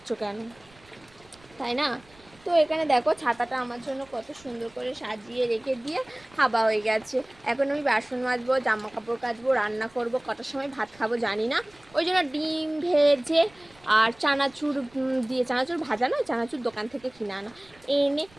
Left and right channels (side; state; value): right; noise; rumble, 28 dB below the sound